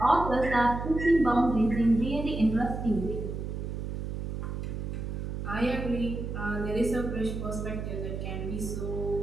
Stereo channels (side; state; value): right; noise; hum, 5 dB below the sound